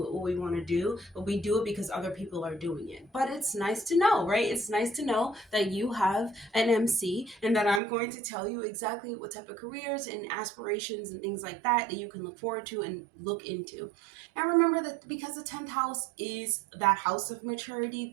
what we want to do, but we do it because other people are doing it. But it's nice to know, right? It's nice to know that you have an MC and that I'm going to tell you exactly what type of careers and aspirations and things like that you can look forward to and look into. And remember that because the 10th house is that house of maturity,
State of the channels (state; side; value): drops out; left; at 7.8 s